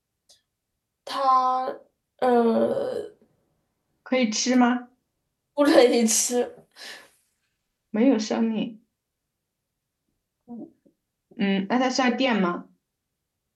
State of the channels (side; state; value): both; identical; correlation 1.00